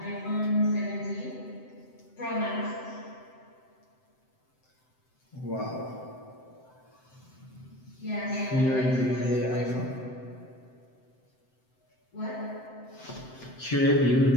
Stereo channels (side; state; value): right; late; 7.8 ms